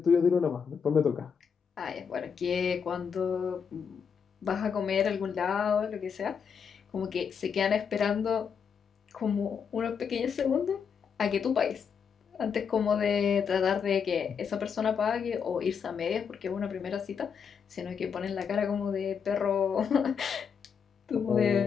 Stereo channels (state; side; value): quieter; right; 6.7 dB